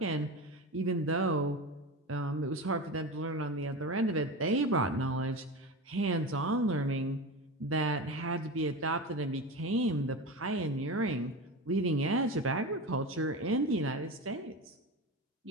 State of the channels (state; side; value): normal; both; correlation 0.25